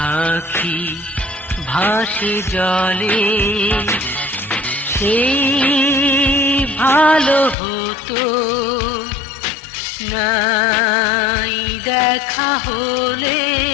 আখি ভাসে জলে, সেই ভালো হতো, নাই দেখা হলে।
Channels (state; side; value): drops out; right; at 7.6 s